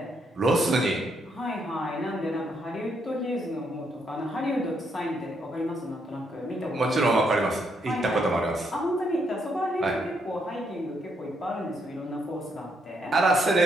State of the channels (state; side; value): normal; both; correlation 0.76